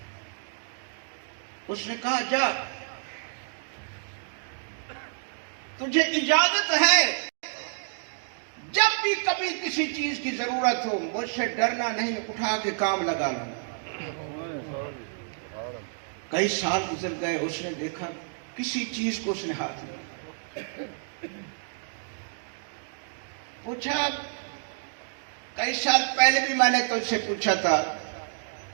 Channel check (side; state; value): left; silent; digital silence